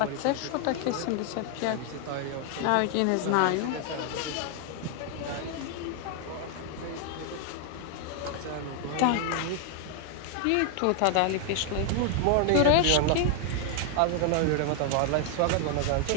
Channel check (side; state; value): both; different; correlation 0.00